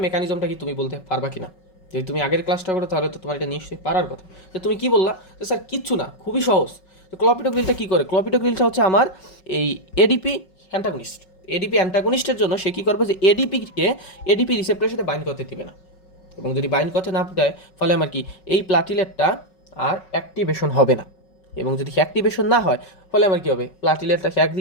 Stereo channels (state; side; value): late; right; 5.4 ms